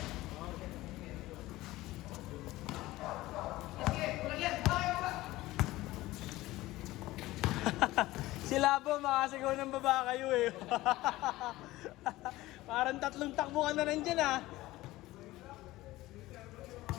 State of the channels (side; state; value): right; quieter; 17.8 dB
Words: Sila po, makasigaw ng baba kayo eh. Parang 3 takbo ka na nandyan ah.